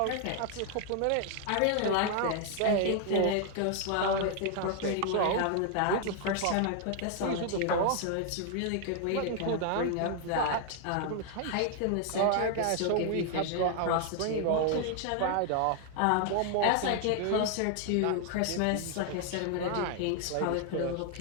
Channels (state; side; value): different; both; correlation 0.00